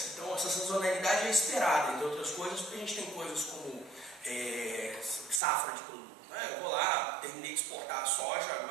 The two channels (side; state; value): left; drops out; at 5.4 s